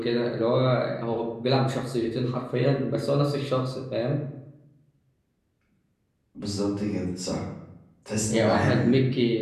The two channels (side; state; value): both; identical; correlation 1.00